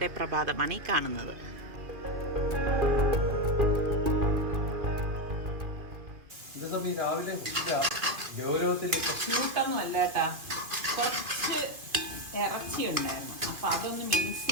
പ്രഭാതമാണ് ഈ കാണുന്നത്. രാവിലെ ക്യൂട്ടൊന്നും അല്ല കേട്ടാ, കുറച്ച് ഇറച്ചി ഉണ്ടായിരുന്നു. അപ്പം അതൊന്ന് മിക്സ്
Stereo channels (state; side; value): late; left; 2.4 ms